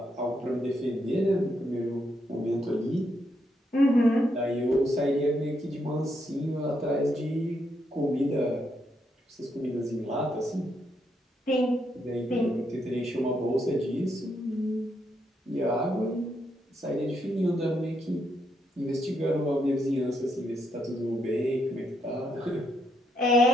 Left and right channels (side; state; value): both; normal; correlation 0.78